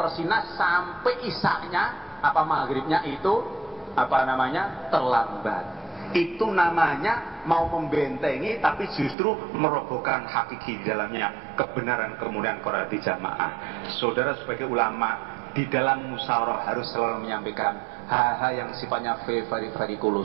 sampai isyanya apa maghribnya itu apa namanya terlambat. Itu namanya mau membentengi tapi justru merobohkan hakiki di dalamnya kebenaran kemudian Quran di jamaah. Saudara sebagai ulama di dalam musyawarah harus selalu menyampaikan hal-hal yang sifatnya very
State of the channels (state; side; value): drops out; left; at 9.2 s